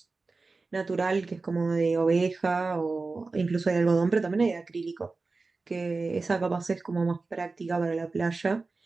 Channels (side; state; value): left; quieter; 3.8 dB